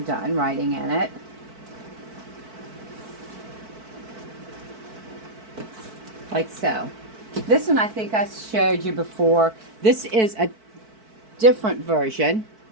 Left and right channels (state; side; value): late; left; 4.5 ms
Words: writing in it. Like so. This one I think I showed you before. This is a different version.